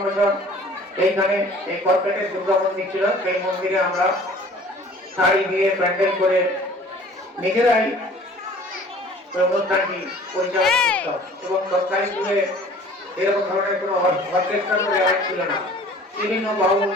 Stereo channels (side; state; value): both; normal; correlation 0.49